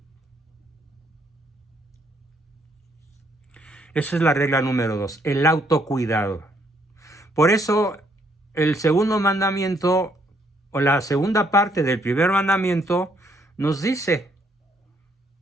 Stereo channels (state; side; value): normal; both; correlation 0.69